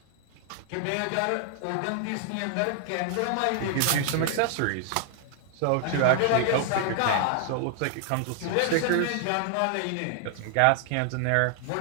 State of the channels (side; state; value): both; different; correlation 0.00